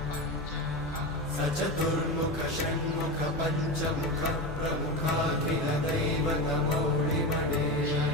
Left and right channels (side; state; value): both; normal; correlation 0.21